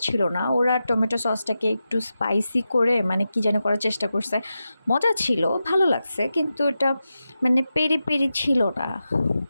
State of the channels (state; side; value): inverted; both; correlation -0.91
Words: ছিল না। ওরা টমেটো সসটাকে একটু স্পাইসি করে মানে কী যেন করার চেষ্টা করছে। মজা ছিল, ভালো লাগছে, কিন্তু এটা মানে পেরি পেরি ছিল না।